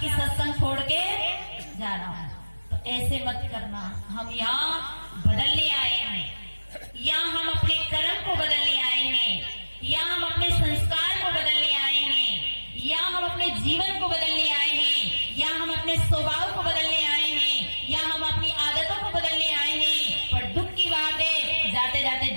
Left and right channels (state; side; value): inverted; both; correlation -1.00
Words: सत्संग छोड़ के जा रहा हूँ। तो ऐसे मत करना। हम यहाँ बदलने आए हैं, यहाँ हम अपने कर्म को बदलने आए हैं, यहाँ हम अपने संस्कार को बदलने आए हैं, यहाँ हम अपने जीवन को बदलने आए हैं, यहाँ हम अपने स्वभाव को बदलने आए हैं, यहाँ हम अपनी आदतों को बदलने आए हैं। पर दुख की बात है, जाते जाते